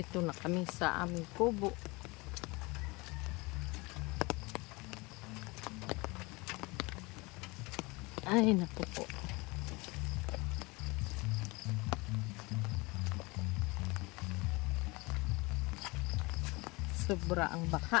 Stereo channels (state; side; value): quieter; right; 25.2 dB